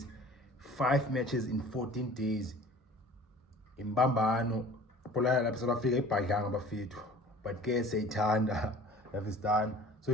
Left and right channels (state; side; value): normal; both; correlation 0.45